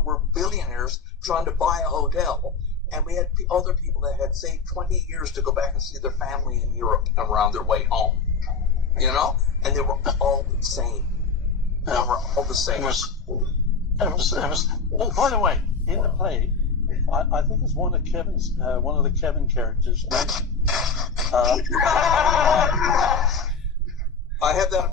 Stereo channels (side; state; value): right; quieter; 5.0 dB